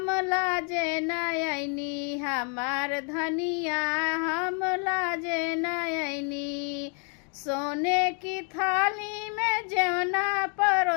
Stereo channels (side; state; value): right; quieter; 38.7 dB